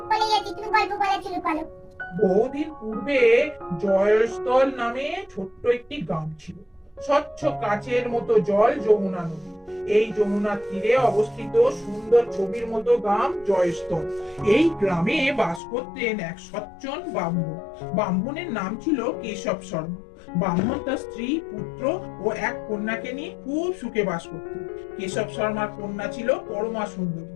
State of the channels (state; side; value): drops out; right; at 15.6 s